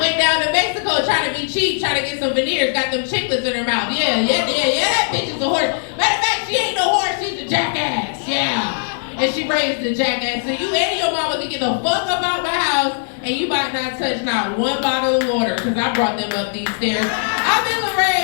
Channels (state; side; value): silent; right; digital silence